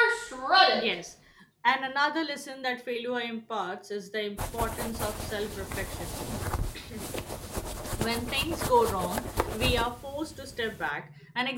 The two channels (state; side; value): identical; both; correlation 1.00